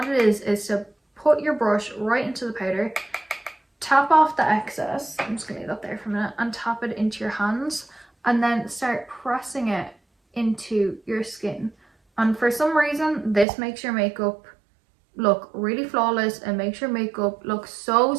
it is to put your brush right into the powder, tap off the excess, I'm just going to leave that there for a minute, and tap it into your hands, and then start pressing it into your skin. And for some reason this makes your makeup look really flawless and makes your makeup look so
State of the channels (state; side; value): drops out; left; at 13.5 s